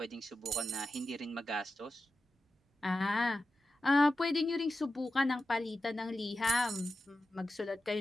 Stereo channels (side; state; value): both; normal; correlation 0.91